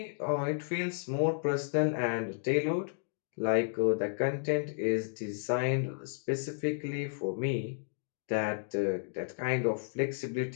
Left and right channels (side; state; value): right; silent; digital silence